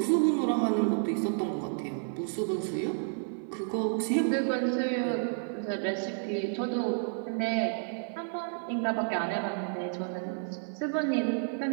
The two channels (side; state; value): left; silent; 57 dB below the other